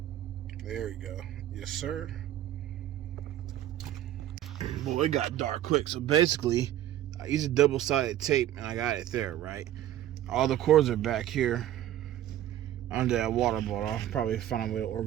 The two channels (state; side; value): quieter; left; 12.4 dB